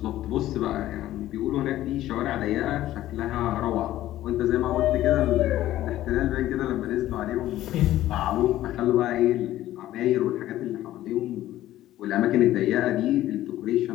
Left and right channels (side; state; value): right; quieter; 14.2 dB